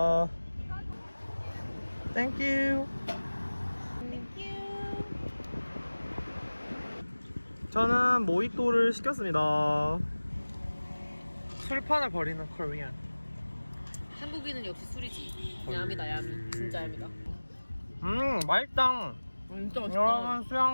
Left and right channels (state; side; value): inverted; both; correlation -1.00